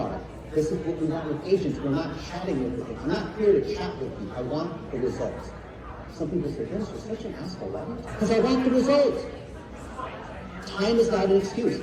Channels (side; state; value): both; identical; correlation 1.00